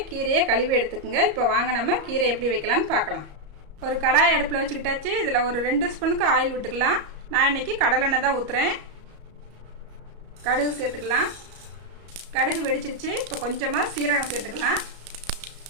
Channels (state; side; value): late; left; 34 ms